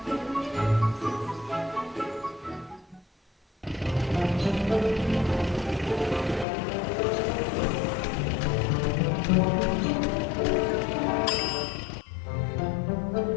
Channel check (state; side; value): drops out; right; at 6.5 s